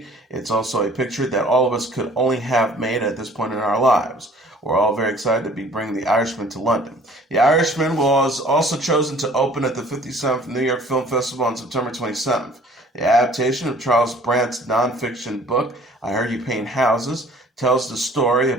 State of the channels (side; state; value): both; normal; correlation 0.53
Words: It's also a picture that all of us could only have made at this point in our lives. We're all very excited to be bringing The Irishman to London." The Irishman was also chosen to open at the 57th New York Film Festival on September 27th. The adaptation of Charles Brandt's nonfiction book, I Heard You Paint Houses, tells the story